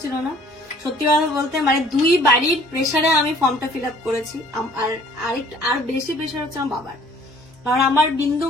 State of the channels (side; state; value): both; normal; correlation 0.55